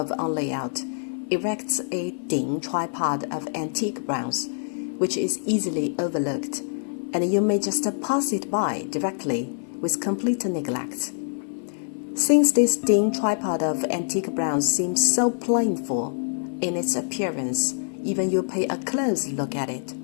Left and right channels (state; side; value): silent; right; 57 dB below the other